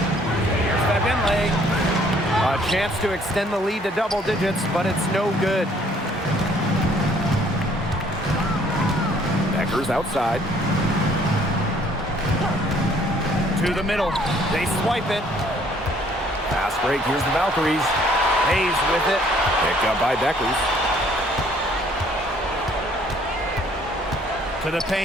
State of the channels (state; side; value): normal; both; correlation 0.61